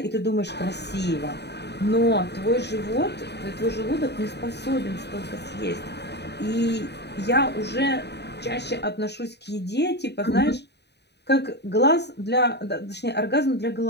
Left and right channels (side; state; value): right; late; 0.49 ms